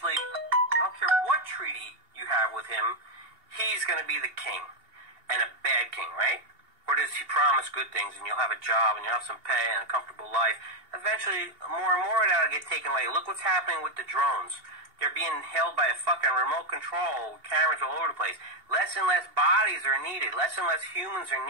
I don't care what treaty you have with him, he's gonna be the king. And a bad king, right? Or does he promise good things and you'll have a job and you'll have some pay and a comfortable life? Eventually, more and more of that will get taken away. Look what's happening with the drones. They're being held by a fucking remote control, cameras all over the place. Less and less bodies are needed. Less and less humans are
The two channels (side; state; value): left; late; 2.8 ms